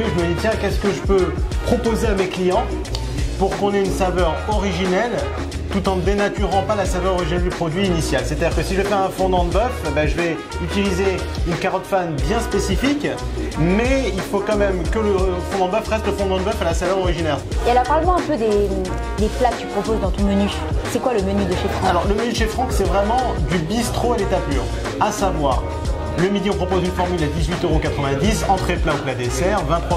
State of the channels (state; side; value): identical; both; correlation 1.00